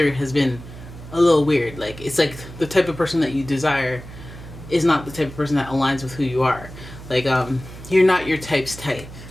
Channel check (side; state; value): right; noise; hum, 15 dB below the sound